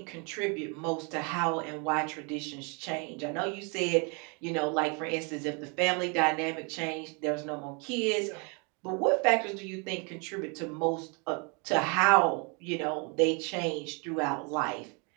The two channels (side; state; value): left; quieter; 33.4 dB